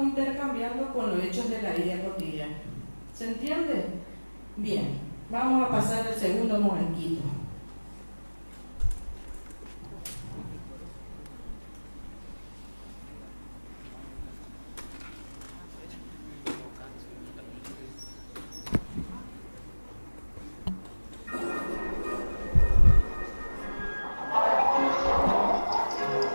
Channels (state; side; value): inverted; both; correlation -1.00